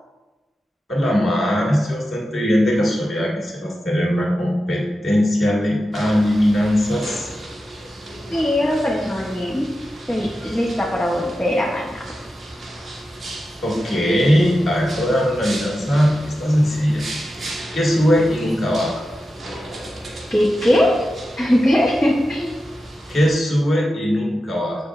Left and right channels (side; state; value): both; normal; correlation 0.91